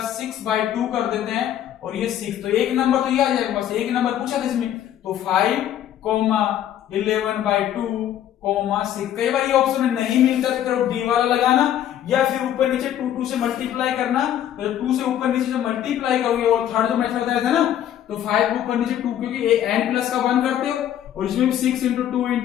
6 by 2 कर देते हैं, और ये 6, तो एक नंबर तो ये आ जाएगा, बस एक नंबर पूछा था इसमें। तो 5 11 by 2 6। कई बार ये ऑप्शन में नहीं मिलता तो डी वाला लगाना, या फिर ऊपर नीचे 2 से मल्टीप्लाई करना, तो 2 से ऊपर नीचे से मल्टीप्लाई करोगे। और थर्ड जो मेथड बताया था ना, तो 5 के ऊपर नीचे 2, क्योंकि n प्लस का 1 करते हो और इसमें 6 into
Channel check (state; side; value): quieter; right; 11.1 dB